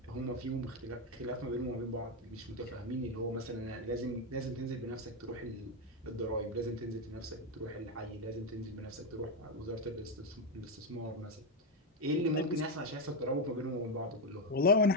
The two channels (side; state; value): both; normal; correlation 0.06